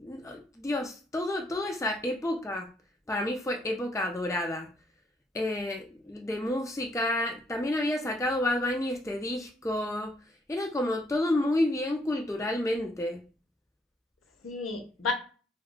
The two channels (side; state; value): both; normal; correlation 0.70